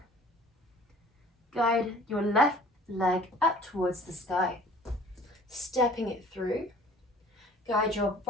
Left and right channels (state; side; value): normal; both; correlation 0.48